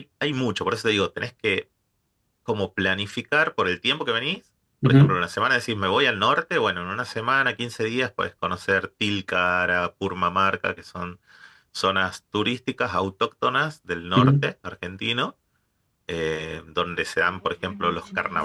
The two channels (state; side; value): identical; both; correlation 1.00